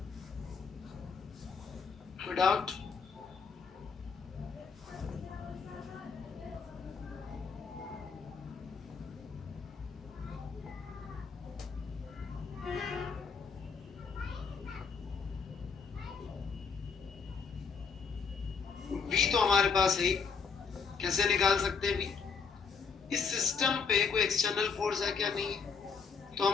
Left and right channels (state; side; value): quieter; right; 5.5 dB